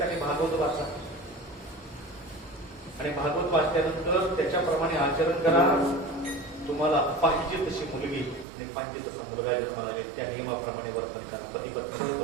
भागवत वाचा आणि भागवत वाचल्यानंतर त्याच्याप्रमाणे आचरण करा. तुम्हाला पाहिजे तशी मुलगी आणि पाहिजे तसा मुलगा जन्माला येईल, त्या नियमाप्रमाणे वर्तन करा. पती पत्नी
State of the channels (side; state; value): left; drops out; at 8.5 s